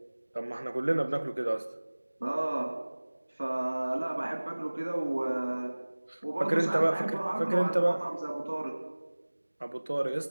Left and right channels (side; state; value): both; inverted; correlation -1.00